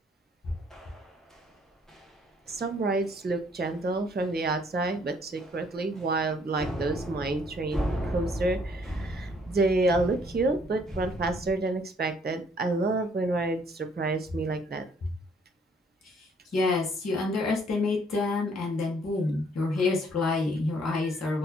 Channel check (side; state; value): both; normal; correlation 0.64